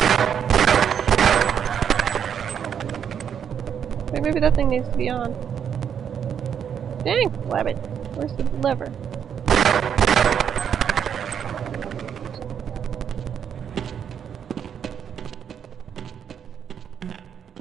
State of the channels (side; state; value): left; quieter; 8.1 dB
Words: Wait, maybe that thing needs to be on. Dang! Wabbit. Where's the lever?